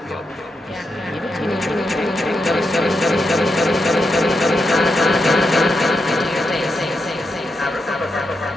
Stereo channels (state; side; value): normal; both; correlation 0.85